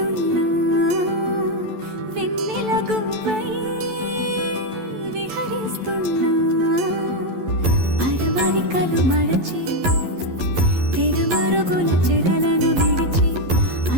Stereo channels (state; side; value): late; left; 11 ms